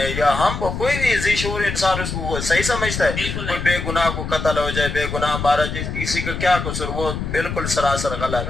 या हम कोई भी ज़ीशूर इंसान उसको सही समझता है। कोई बेगुनाह को कत्ल हो जाए, बेगुनाह मारा जाए, किसी का क्या कसूर, वो बिल्कुल सरासर गलत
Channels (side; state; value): left; noise; rumble, 5 dB below the sound